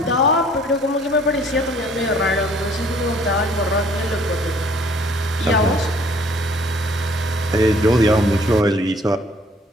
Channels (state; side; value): normal; both; correlation 0.58